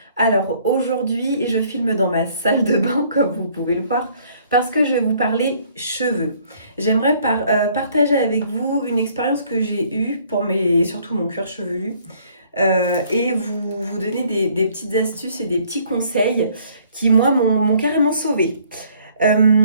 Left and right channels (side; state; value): both; inverted; correlation -0.61